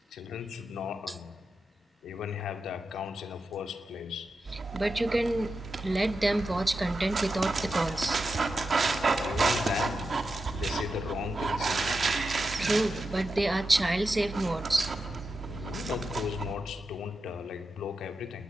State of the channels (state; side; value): normal; both; correlation 0.89